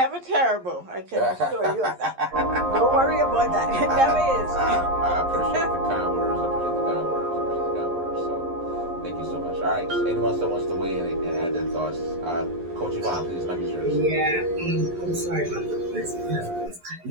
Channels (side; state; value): left; late; 11 ms